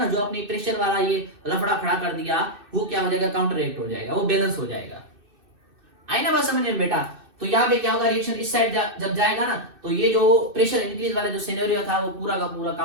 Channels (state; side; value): late; left; 2.6 ms